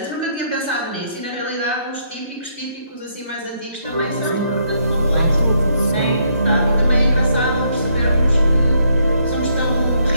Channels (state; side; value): inverted; both; correlation -0.72